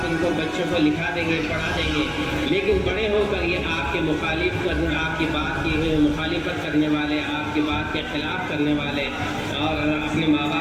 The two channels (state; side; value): identical; both; correlation 1.00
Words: इनको बच्चों को लिखा देंगे, पढ़ा देंगे, लेकिन बड़े होकर ये आपके मुखालिफ करने, आपकी बात की मुखालिफत करने वाले, आपकी बात के खिलाफ करने वाले और अपने माँ